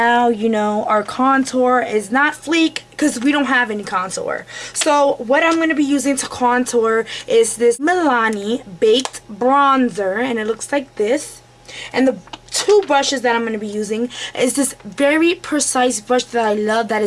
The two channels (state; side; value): identical; both; correlation 1.00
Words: you know, our contour is not Fleek because we don't have any contour. So what I'm going to be using to contour is this Milani Baked Bronzer. And it looks like this. And the two brushes that I'm going to be using is this very precise brush that I love that